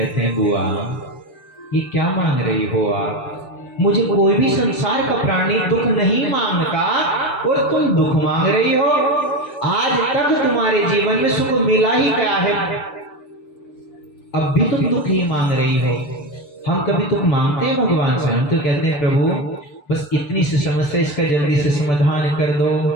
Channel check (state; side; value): late; right; 6.8 ms